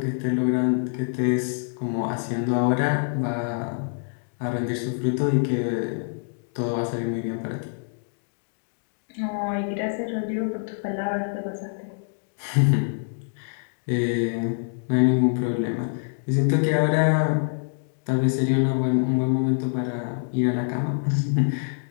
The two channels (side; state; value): right; silent; digital silence